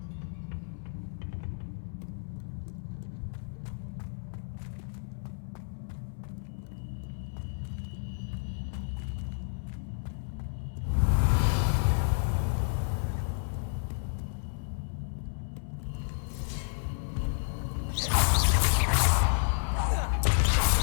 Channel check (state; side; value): silent; right; 57 dB below the other